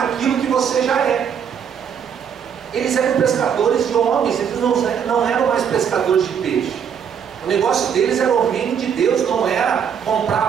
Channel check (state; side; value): quieter; left; 7.7 dB